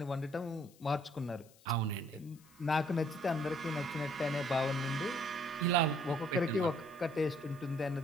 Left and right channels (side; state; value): left; noise; hiss, 27 dB below the sound